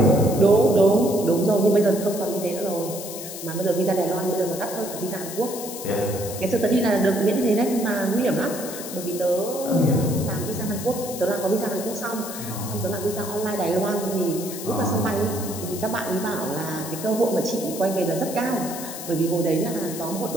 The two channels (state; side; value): noise; left; hiss, 10 dB below the sound